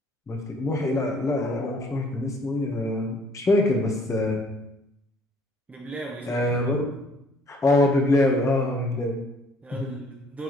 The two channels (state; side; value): normal; both; correlation 0.60